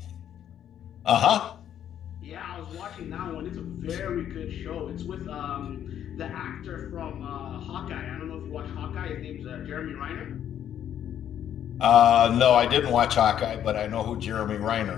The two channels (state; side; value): quieter; right; 10.1 dB